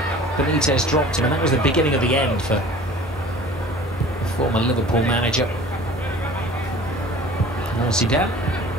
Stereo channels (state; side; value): normal; both; correlation 0.45